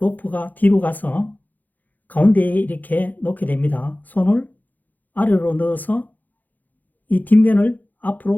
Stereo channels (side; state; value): right; late; 0.083 ms